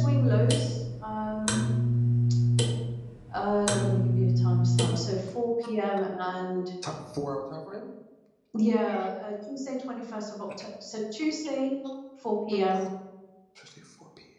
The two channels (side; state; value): both; identical; correlation 1.00